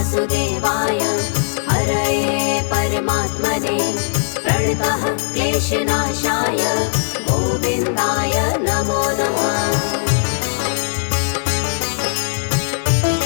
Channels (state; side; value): silent; right; digital silence